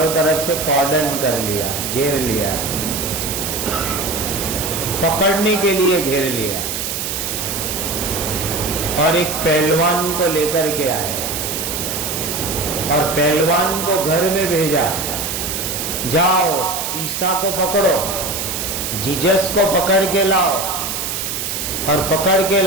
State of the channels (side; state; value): right; noise; hiss, 3 dB below the sound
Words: طرف سے کارڈن کر لیا، گھیر لیا، پکڑنے کے لیے گھیر لیا، اور ایک پہلوان کو لے کر کے آئے اور پہلوان کو گھر میں بھیجا، جاؤ عیسیٰ کو پکڑو، جیزس کو پکڑ کے لاؤ، اور پکڑ کے